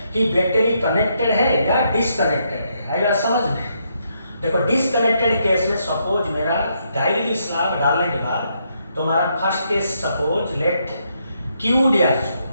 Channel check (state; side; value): inverted; both; correlation -0.76